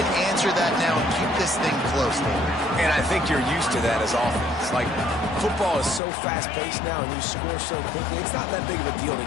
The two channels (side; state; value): right; drops out; at 6.0 s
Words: answer that now and keep this thing close, David. And I think you're used to that as offense. Like, football is so fast-paced now and you score so quickly, it's not that big of a deal to